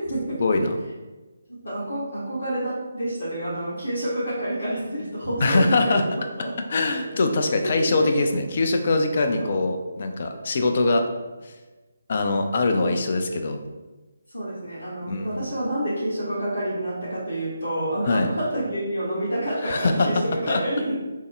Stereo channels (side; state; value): both; inverted; correlation -0.83